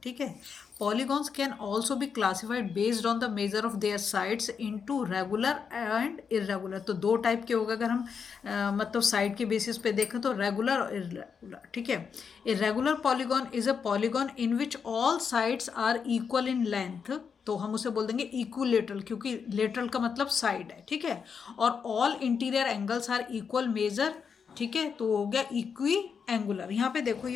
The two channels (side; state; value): right; quieter; 6.3 dB